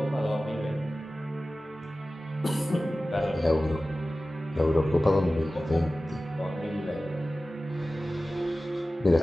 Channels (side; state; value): both; normal; correlation 0.96